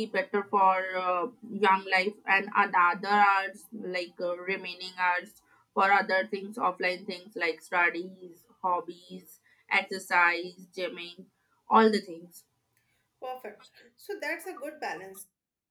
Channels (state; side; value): identical; both; correlation 1.00